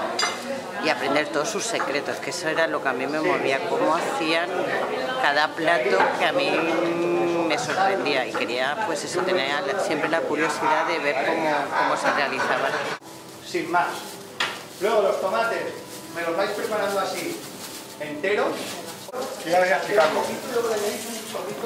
y aprender todos sus secretos, que eso era lo que a mí me movía, cómo hacían cada plato, que a mí me sorprendía y quería pues eso, tener siempre la curiosidad de ver cómo se realizaban. Sin más. Luego los tomates me los vais preparando así, enteros. Ya voy a explicarlo.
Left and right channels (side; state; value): both; identical; correlation 1.00